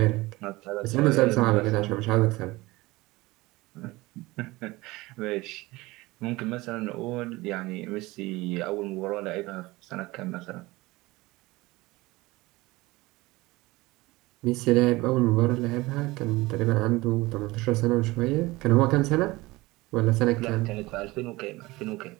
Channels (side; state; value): left; quieter; 20.8 dB